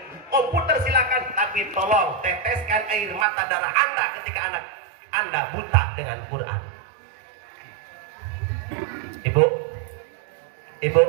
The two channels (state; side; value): drops out; left; at 3.2 s